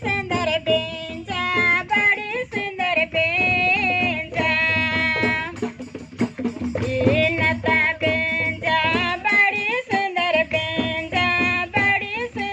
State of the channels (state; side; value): identical; both; correlation 1.00